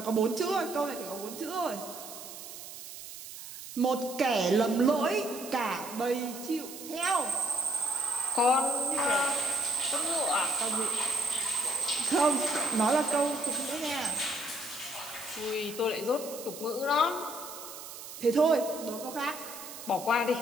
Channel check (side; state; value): right; noise; hiss, 12 dB below the sound